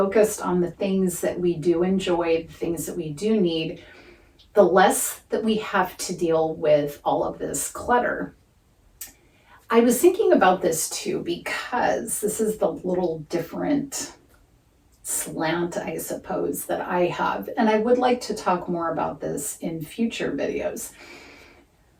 on the things that we do enjoy, the things that we do need, the less that we have to deal with all of this clutter. I was thinking about this too because this is the little different slant, I suppose, that I have. And I would like to talk more about this in future videos.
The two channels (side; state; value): both; identical; correlation 1.00